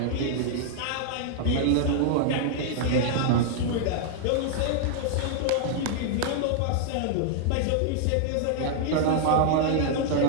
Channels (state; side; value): different; both; correlation -0.01